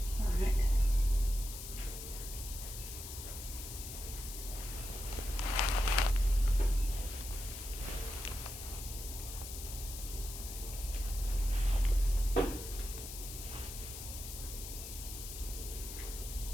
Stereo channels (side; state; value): left; noise; hiss, 9 dB below the sound